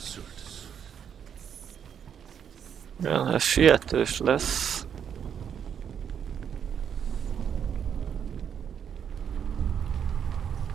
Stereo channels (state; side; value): quieter; left; 8.1 dB